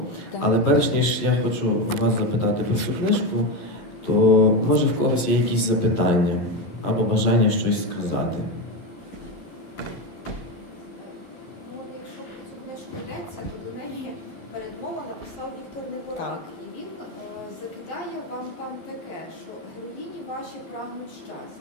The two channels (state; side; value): late; right; 11 ms